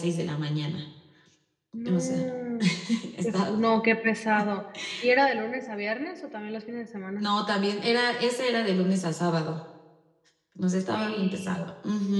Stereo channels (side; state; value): both; identical; correlation 1.00